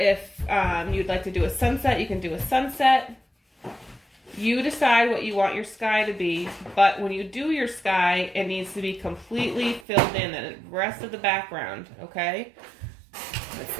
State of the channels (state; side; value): drops out; left; at 9.9 s